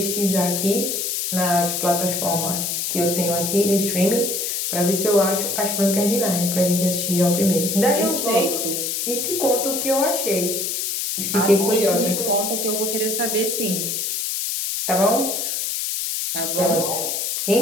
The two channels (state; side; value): noise; left; hiss, 1 dB below the sound